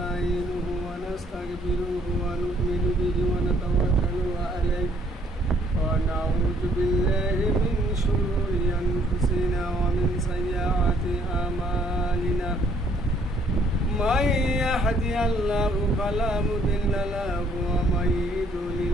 ওয়া নাস্তাগফিরুহু ওয়া নু'মিনু বিহি ওয়া নাতাওয়াক্কালু আলাইহি ওয়া নাউযু বিল্লাহি মিন শুরুরি আনফুসিনা ওয়া মিন সাইয়্যাতি আমালিনা। মান ইয়াহদিহিল্লাহু ফালা মুদিল্লা লাহু ওয়া মান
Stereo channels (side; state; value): both; normal; correlation 0.64